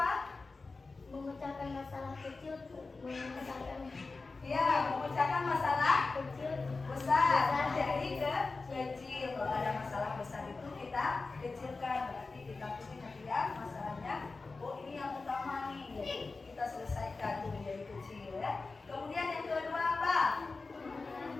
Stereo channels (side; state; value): right; quieter; 3.9 dB